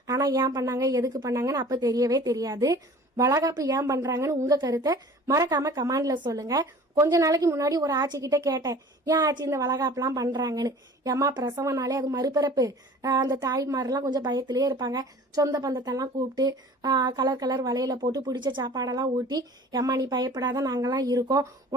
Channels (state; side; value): normal; both; correlation 0.45